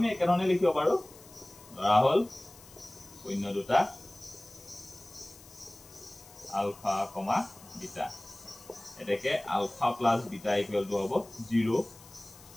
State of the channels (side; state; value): left; noise; hiss, 21 dB below the sound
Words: একেধৰণে লিখিব পাৰো ধৰা হল শূন্য দুটা আলফা কমা বিটা এটাকে alpha plus beta equal to হ'ব 0